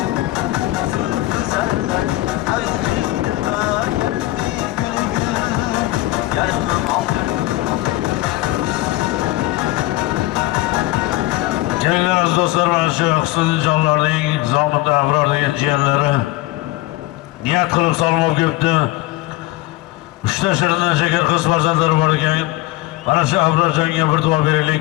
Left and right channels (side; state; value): right; quieter; 17.9 dB